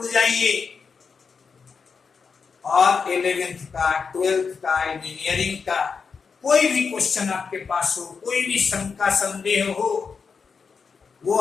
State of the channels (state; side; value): quieter; right; 5.5 dB